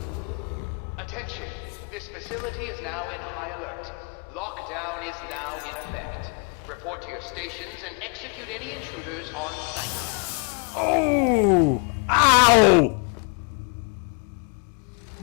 Attention! This facility is now in high alert. Lockdown is now in effect. Report to your stations and execute any intruders on site. Oh! Ow!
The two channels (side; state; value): right; quieter; 37.2 dB